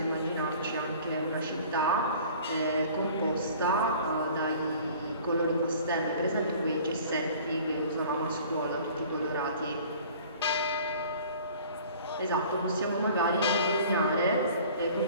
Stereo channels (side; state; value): both; inverted; correlation -0.48